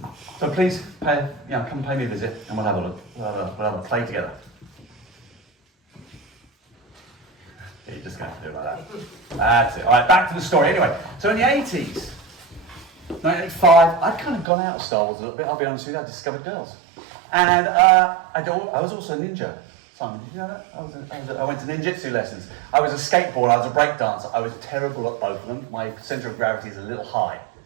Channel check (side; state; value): left; drops out; at 14.5 s